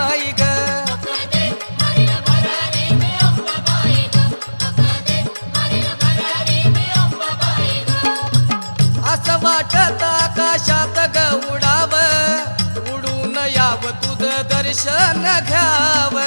ग असं वाटत आकाशात ग उडाव उडून याव तुझं दर्शन घ्याव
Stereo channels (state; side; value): inverted; both; correlation -1.00